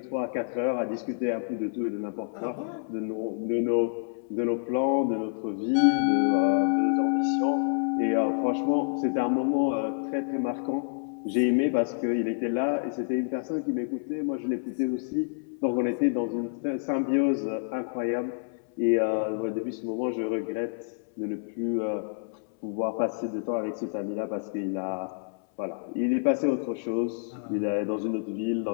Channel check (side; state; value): right; silent; 59 dB below the other